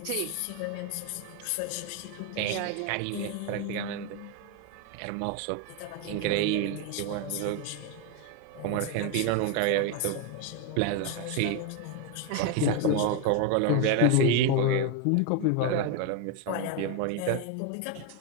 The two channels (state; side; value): different; both; correlation 0.02